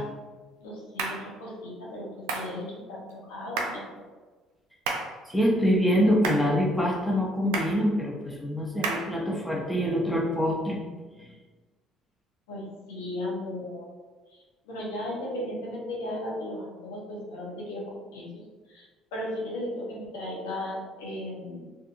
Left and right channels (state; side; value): normal; both; correlation 0.67